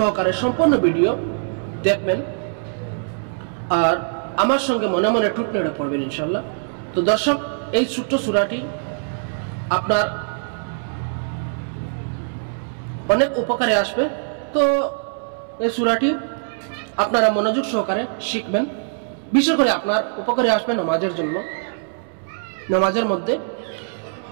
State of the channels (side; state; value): left; silent; 64 dB below the other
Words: সম্পূর্ণ ভিডিও দেখবেন আর আমার সঙ্গে মনে মনে টুট নেড়ে পড়বেন ইনশাল্লাহ। তো দর্শক, এই ছোট্ট সূরাটি আপনার অনেক উপকারে আসবে। তো এই সূরাটি আপনারা মনোযোগ সহকারে শিখবেন, বিশেষ করে আপনার উপকারে আসবে নামাজের জন্য, নামাজের মধ্যে।